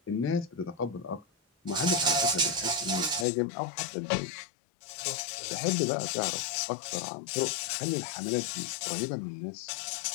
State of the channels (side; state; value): right; drops out; at 3.2 s